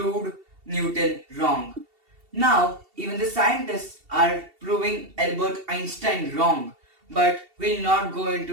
Newton wrong. Now, even the scientists are proving Albert Einstein wrong, but we'll not go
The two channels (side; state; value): left; late; 2.7 ms